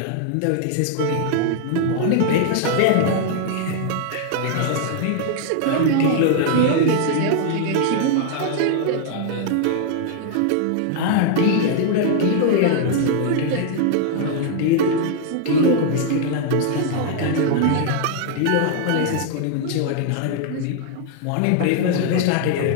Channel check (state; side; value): different; both; correlation 0.00